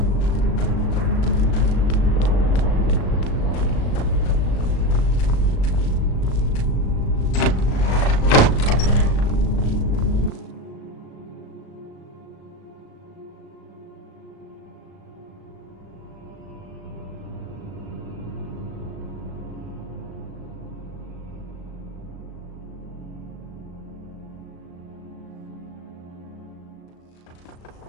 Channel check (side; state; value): right; late; 36 ms